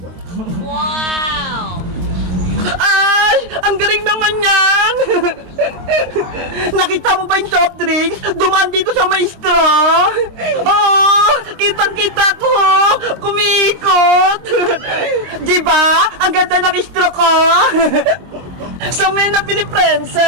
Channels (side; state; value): left; late; 23 ms